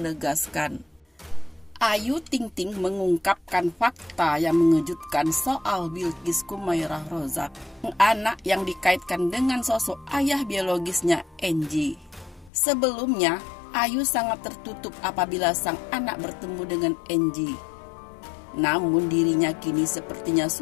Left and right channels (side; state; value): right; drops out; at 12.5 s